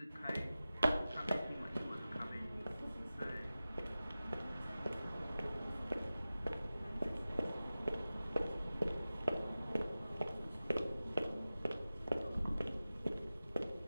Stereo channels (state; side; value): inverted; both; correlation -0.95